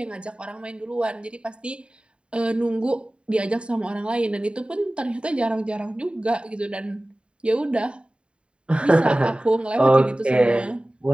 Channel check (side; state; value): left; late; 0.055 ms